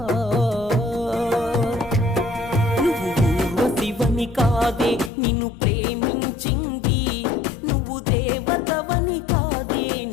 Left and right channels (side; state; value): right; drops out; at 5.1 s